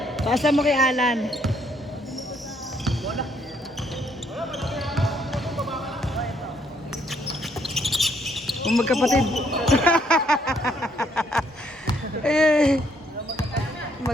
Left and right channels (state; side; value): normal; both; correlation 0.69